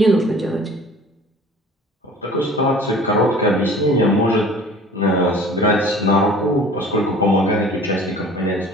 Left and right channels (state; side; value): normal; both; correlation 0.46